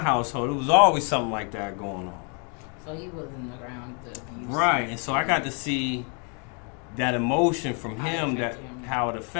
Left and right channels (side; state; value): right; quieter; 37.4 dB